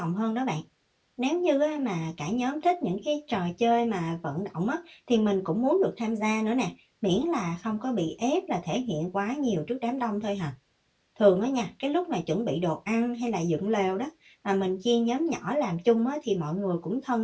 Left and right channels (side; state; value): both; identical; correlation 1.00